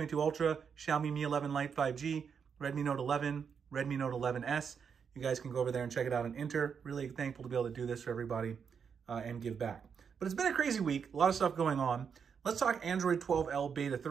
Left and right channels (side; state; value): left; quieter; 6.7 dB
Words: Ultra, Xiaomi Mi 11 Lite 5G, Redmi Note 11, Redmi Note 11S. You guys can go over there and check it out and enter. Really thankful to be able to do this for everybody and give back. But it's been a crazy week, a lot of stuff going on. Let's talk Android 12L Beta